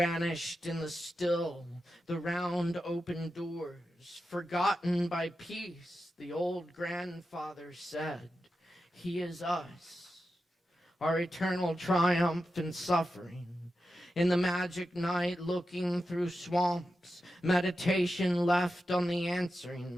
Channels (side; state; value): both; normal; correlation 0.90